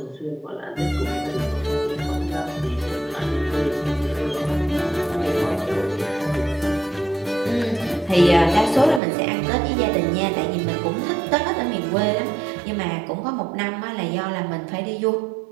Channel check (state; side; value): drops out; left; at 9.0 s